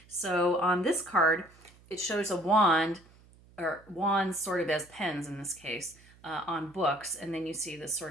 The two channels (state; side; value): noise; right; hum, 26 dB below the sound